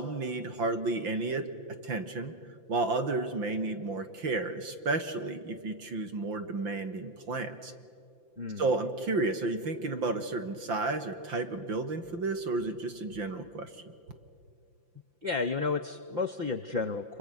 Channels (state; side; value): late; left; 5.8 ms